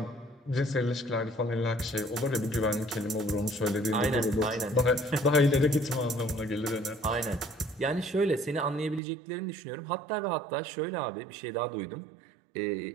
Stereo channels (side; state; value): left; drops out; at 9.0 s